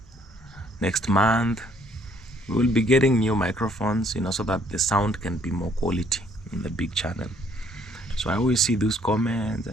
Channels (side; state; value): both; normal; correlation 0.64